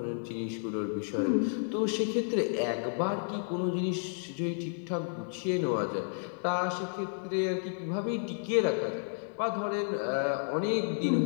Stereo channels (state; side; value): silent; right; 57 dB below the other